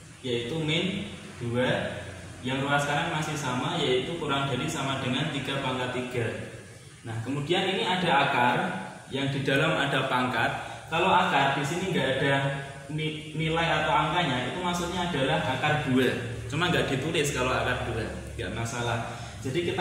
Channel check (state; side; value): identical; both; correlation 1.00